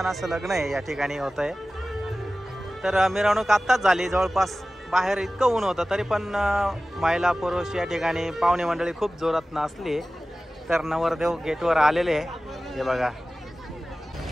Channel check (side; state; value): both; normal; correlation 0.96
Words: असं लग्न आहे या ठिकाणी होत आहे। तर मिरवणूक आत्ताच झाली, जवळपास बाहेर इतकं ऊन होतं तरी पण महिला पुरुष या ठिकाणी पाहुणे मंडळी खूप जोरात नाचली। तर नवरदेव गेटवर आलेले आहे हे बघा।